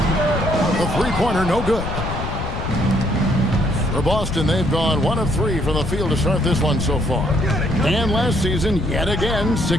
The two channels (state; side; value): noise; left; rumble, 5 dB below the sound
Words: The three-pointer no good. For Boston, they've gone 1 of 3 from the field to start this one so far. And last season, yet again,